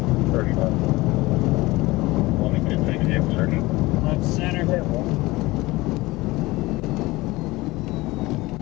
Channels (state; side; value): quieter; right; 20.6 dB